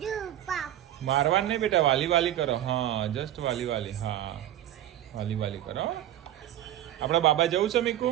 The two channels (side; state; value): left; quieter; 12.5 dB